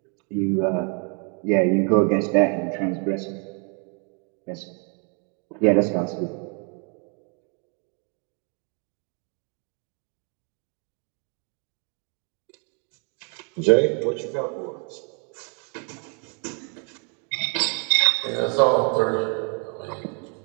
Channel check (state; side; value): quieter; left; 37.7 dB